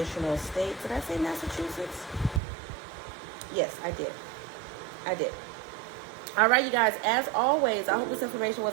states. Did I say Massachusetts? Yes, I did. I did. All right, you guys, as always, I hope this information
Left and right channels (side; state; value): left; drops out; at 2.4 s